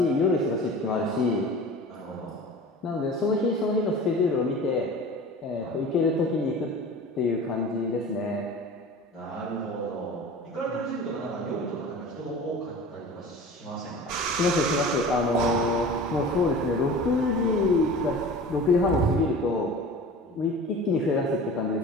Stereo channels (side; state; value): both; normal; correlation 0.38